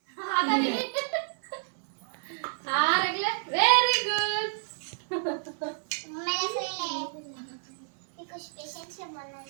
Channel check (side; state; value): left; silent; digital silence